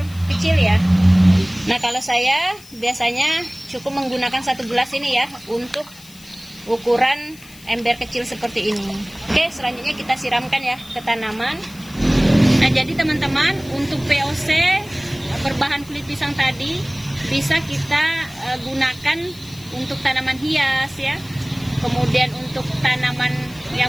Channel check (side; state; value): left; noise; hiss, 21 dB below the sound